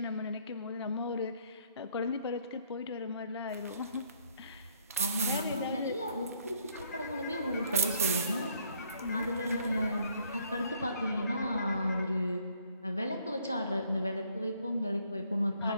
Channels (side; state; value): both; inverted; correlation -0.65